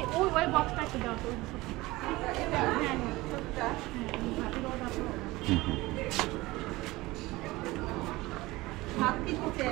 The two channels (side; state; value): left; quieter; 20.1 dB